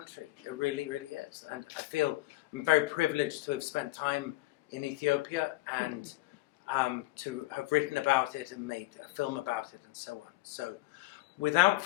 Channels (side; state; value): right; quieter; 19.3 dB